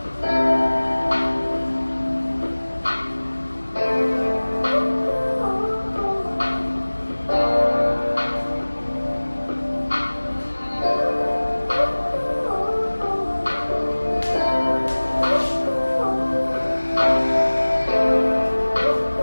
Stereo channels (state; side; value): inverted; both; correlation -1.00